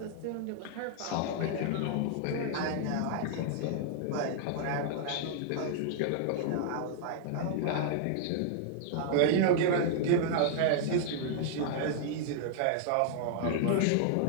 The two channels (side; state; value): both; different; correlation -0.01